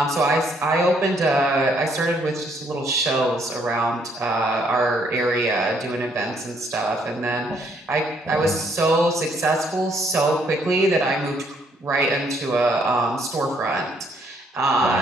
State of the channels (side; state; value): both; normal; correlation 0.68